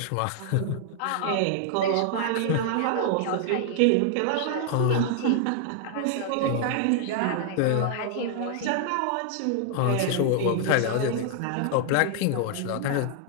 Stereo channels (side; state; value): both; different; correlation 0.00